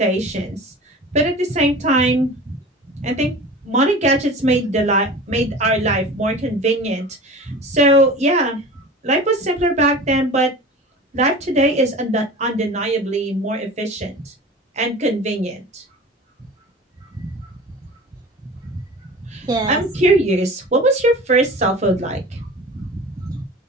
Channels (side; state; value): both; normal; correlation 0.37